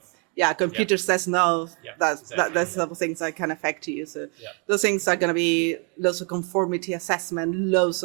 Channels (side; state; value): left; quieter; 35.9 dB